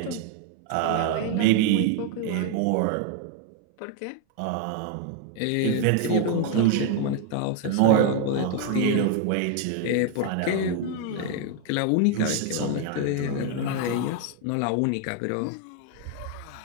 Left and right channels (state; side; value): different; both; correlation 0.01